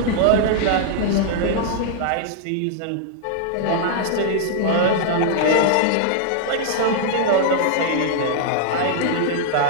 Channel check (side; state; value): both; different; correlation -0.01